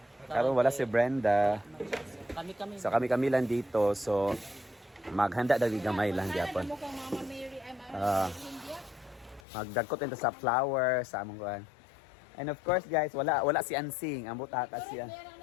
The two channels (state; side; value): drops out; right; at 9.4 s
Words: Karon wala si Brenda. Kami-kami. So kami lang dito. So maghanda dali gamay lang gyapon. Magdagkot into sa flower sa among kuan. And of course guys, wala si Ansing. Ambot ata siya.